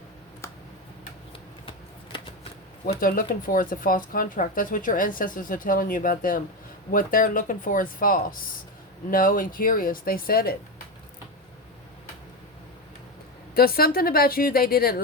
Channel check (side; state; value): both; normal; correlation 0.15